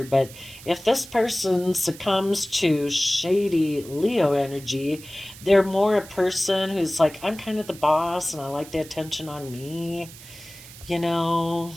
But if this person succumbs to shady Leo energy, they're more a person who's like, I'm kind of the boss and I like the attention on me, you know,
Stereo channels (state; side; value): noise; right; hiss, 18 dB below the sound